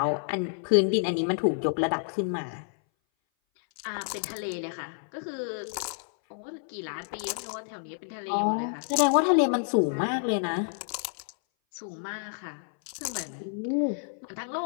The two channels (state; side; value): silent; right; 58 dB below the other